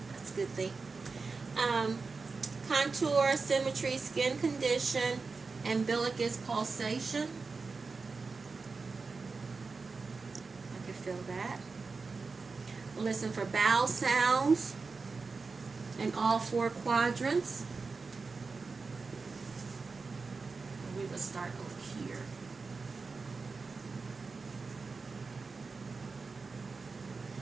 That's a good thing. Contour, symmetry, skin condition, umbilicus pulsation. I can feel that. Listen for bowel sounds in all 4 quadrants. We will start over here.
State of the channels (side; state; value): left; quieter; 4.3 dB